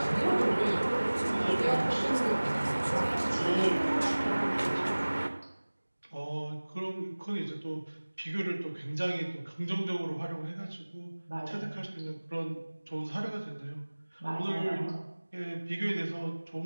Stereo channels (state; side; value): inverted; both; correlation -1.00